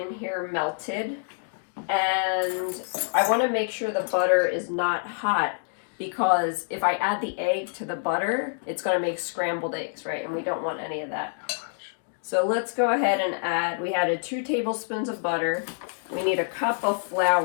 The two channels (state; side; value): silent; right; digital silence